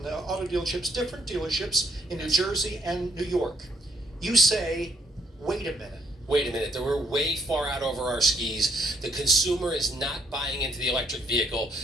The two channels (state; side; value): normal; both; correlation 0.68